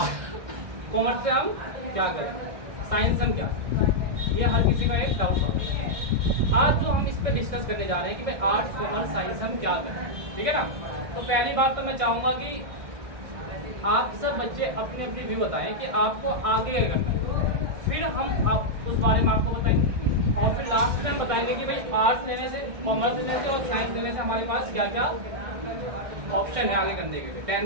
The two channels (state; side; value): late; left; 1.6 ms